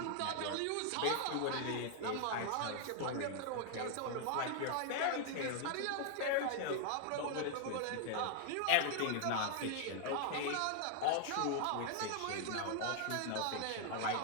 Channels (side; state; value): both; different; correlation 0.00